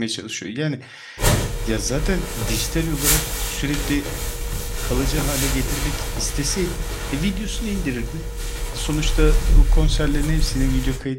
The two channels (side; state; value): both; identical; correlation 1.00